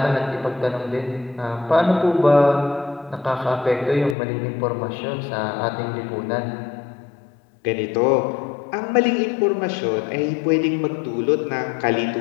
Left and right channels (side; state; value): right; drops out; at 4.2 s